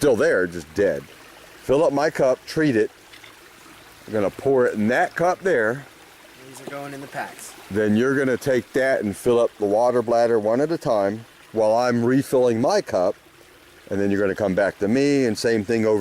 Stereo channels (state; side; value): identical; both; correlation 1.00